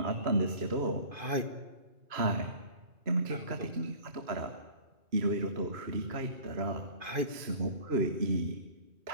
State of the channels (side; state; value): left; late; 2.5 ms